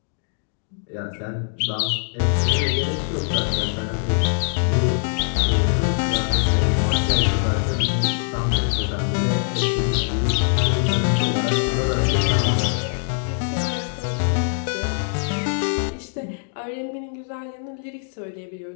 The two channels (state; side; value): silent; right; digital silence